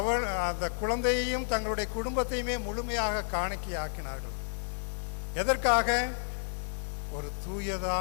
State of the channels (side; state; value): right; silent; digital silence